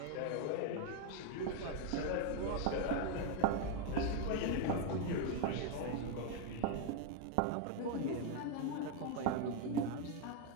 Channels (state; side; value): different; both; correlation 0.01